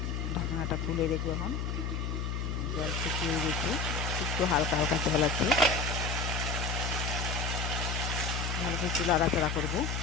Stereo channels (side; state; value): left; noise; hum, 2 dB below the sound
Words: ঢাকনাটা খুলে দেখবো। এখন জল শুকিয়ে গেছে, একটু হালকা হালকা জল আছে। ভালো করে একটু নাড়াচাড়া করবো।